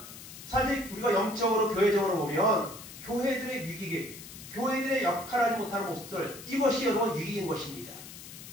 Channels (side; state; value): left; noise; hiss, 14 dB below the sound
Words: 사실 우리가 영적으로 교회적으로 보면 교회들의 위기, 교회들의 역할하지 못하는 모습들, 이것이 여러분 위기인 것입니다.